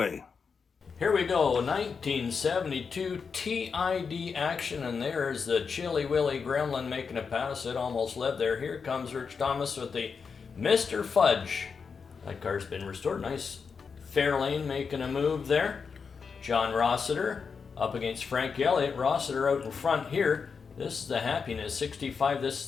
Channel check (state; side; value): quieter; right; 5.6 dB